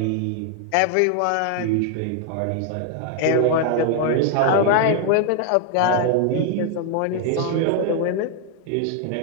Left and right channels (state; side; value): different; both; correlation 0.00